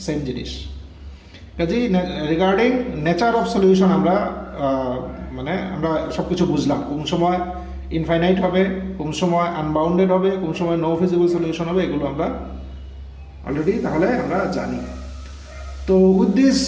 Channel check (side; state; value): both; identical; correlation 1.00